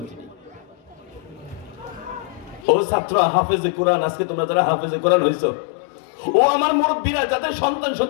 তিনি। ও ছাত্র হাফেজে কোরআন, আজকে তোমরা যারা হাফেজে কোরআন হইছো, ও আমার মুরব্বীরা যাদের সন্তান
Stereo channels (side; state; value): right; drops out; at 2.7 s